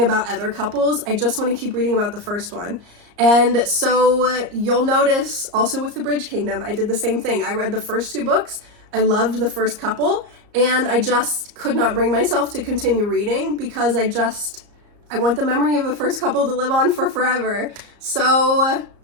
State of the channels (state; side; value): late; left; 34 ms